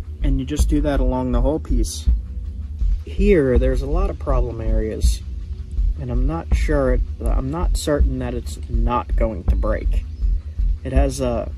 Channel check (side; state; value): both; identical; correlation 1.00